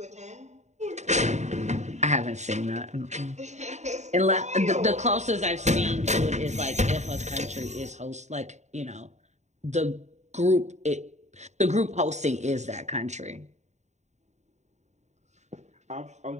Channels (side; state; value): left; late; 0.34 ms